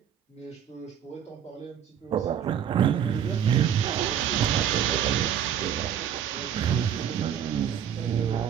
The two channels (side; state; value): left; quieter; 9.1 dB